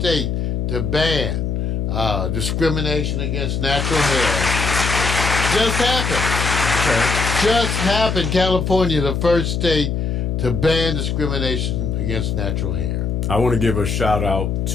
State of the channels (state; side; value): noise; left; hum, 1 dB below the sound